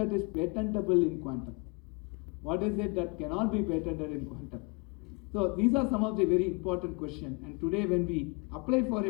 is patentable in quantum? What is it that cannot be patented in quantum? So these are some of the very important questions. And today when we apply for a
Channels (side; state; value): right; quieter; 31.4 dB